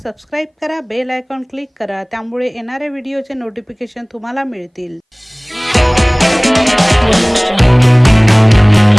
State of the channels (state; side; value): identical; both; correlation 1.00